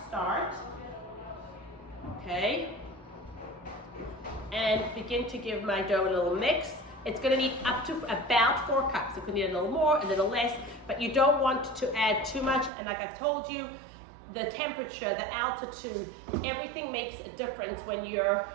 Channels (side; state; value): left; drops out; at 12.7 s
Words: start. Okay. And begin to give my dough a little mix. It's going to need up to about 4 cups. It could need a little more, a little less, but you don't want to add too much. And like I've told you, the temperature, the altitude, everything makes a difference when you're